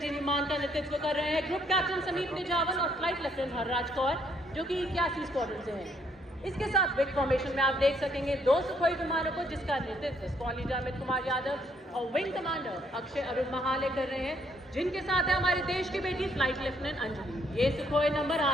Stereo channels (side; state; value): both; normal; correlation 0.69